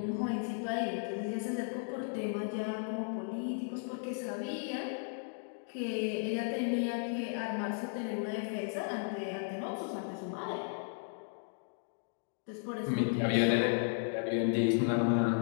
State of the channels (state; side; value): silent; right; digital silence